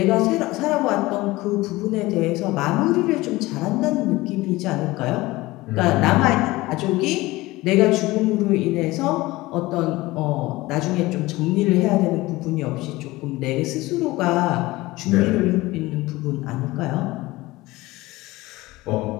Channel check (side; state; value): right; quieter; 19.7 dB